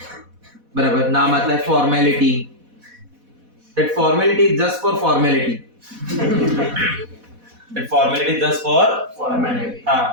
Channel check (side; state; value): left; late; 4.1 ms